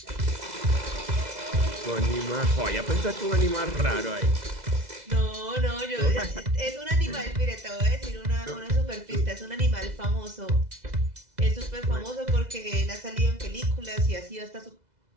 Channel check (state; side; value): late; left; 2.0 ms